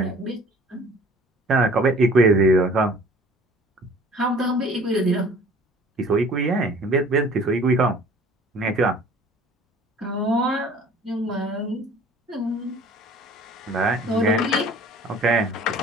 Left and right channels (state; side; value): normal; both; correlation 0.50